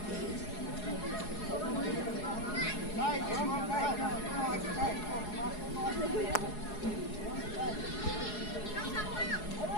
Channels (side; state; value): right; late; 4.8 ms